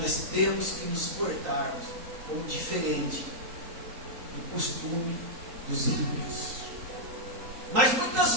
temos que nos portarmos como diferente do costume dos ímpios. Mas muitas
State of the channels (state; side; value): late; left; 3.8 ms